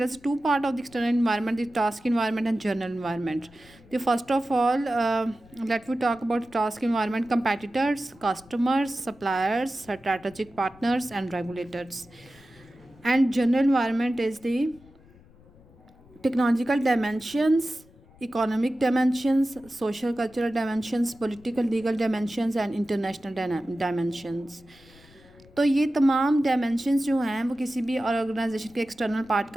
is two part of the external environment: the task environment and general environment. The first of all, let we talk about task environment: competitors, customers, suppliers, strategic partners, and regulators. And general environment is the technological dimensions, economic dimensions, social cultural dimensions, political legal dimensions, and international dimensions. तो ये तमाम dimensions जो हैं वो किसी भी organisation के external part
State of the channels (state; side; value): noise; left; rumble, 26 dB below the sound